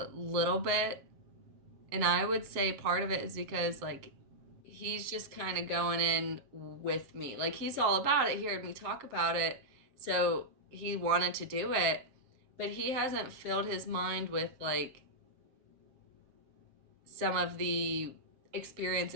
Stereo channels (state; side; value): late; left; 7.5 ms